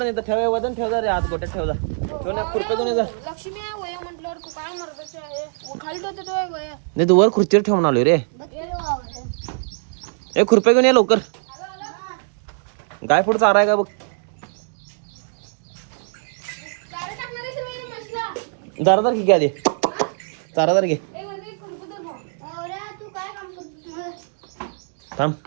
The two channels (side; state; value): left; silent; 64 dB below the other